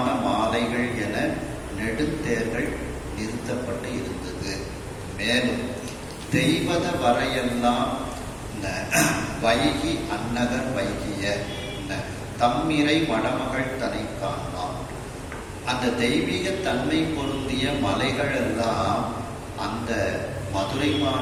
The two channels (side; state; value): both; identical; correlation 1.00